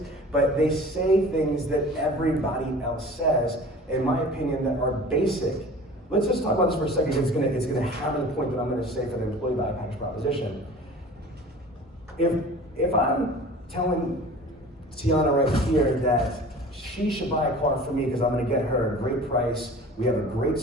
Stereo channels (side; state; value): both; normal; correlation 0.42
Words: But they say things that everybody else says, in my opinion, that are basic. Let's just talk about this for a second. It's gonna hammer the point that I'm gonna say for the employee value package proposition. If I'm telling Tiana right here that she should buy a car from me because I'm gonna get her a great price, we have a great